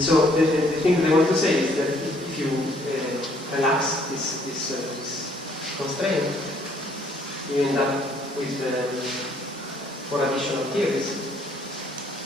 the thing that I want to say is that if you relax this constraint, you end up with 4 additional theories.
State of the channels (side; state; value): both; normal; correlation 0.64